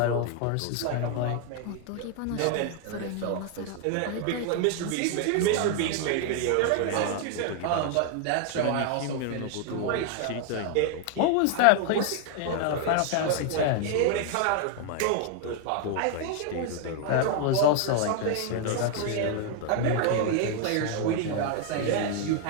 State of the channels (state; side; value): different; both; correlation 0.00